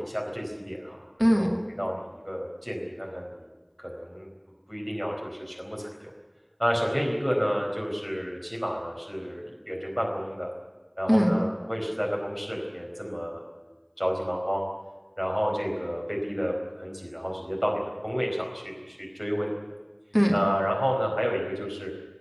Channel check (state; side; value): identical; both; correlation 1.00